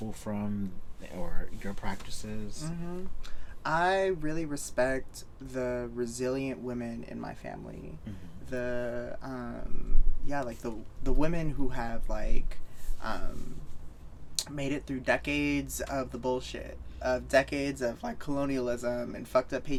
from, or your practices? I really respect the resilient women in my family. The like the women who have like made it through decades of the bullshit, of decades of like colonialism and fucked up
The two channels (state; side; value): identical; both; correlation 1.00